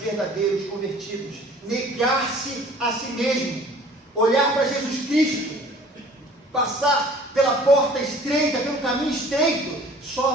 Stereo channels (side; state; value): both; normal; correlation 0.50